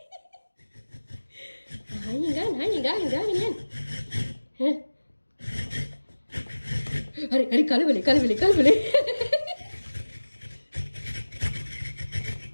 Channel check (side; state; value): both; inverted; correlation -1.00